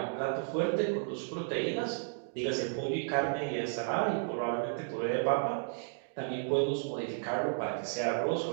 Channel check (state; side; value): silent; left; digital silence